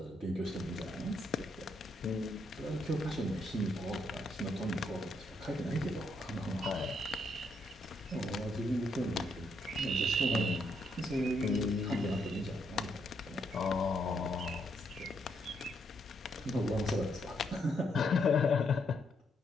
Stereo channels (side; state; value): both; normal; correlation 0.76